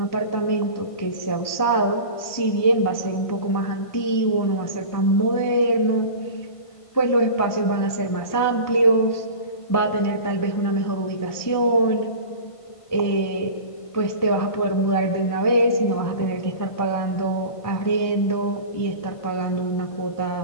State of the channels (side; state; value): right; late; 1.5 ms